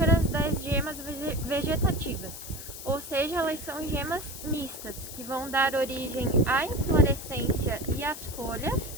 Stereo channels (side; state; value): left; noise; hiss, 11 dB below the sound